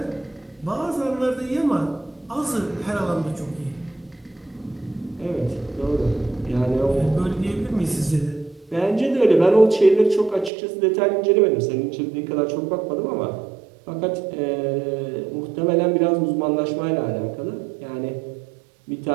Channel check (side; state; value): left; drops out; at 10.5 s